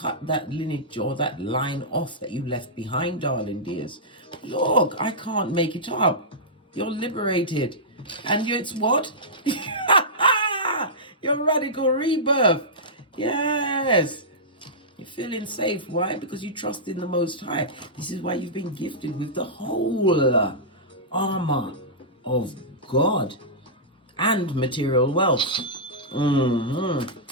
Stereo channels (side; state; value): both; normal; correlation -0.14